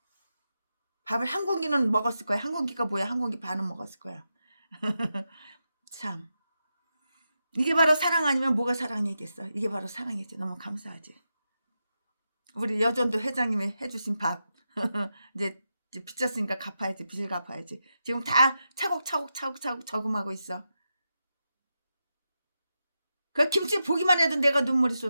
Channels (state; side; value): inverted; both; correlation -0.88